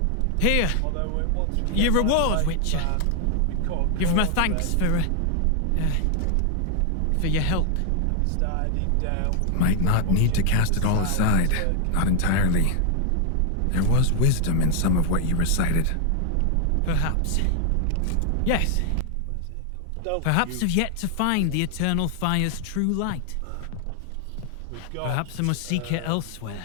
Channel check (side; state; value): both; different; correlation 0.00